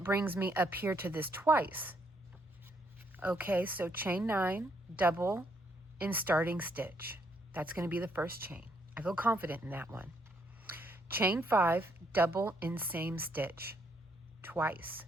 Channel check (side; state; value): both; normal; correlation 0.72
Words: brings me up here to this twice. Okay, so chain 9, double in starting stitch. That's going to be the first chain. I feel confident in that one. Chain 5, double in same stitch twice.